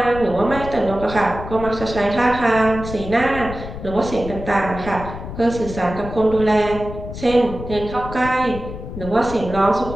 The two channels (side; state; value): left; noise; rumble, 10 dB below the sound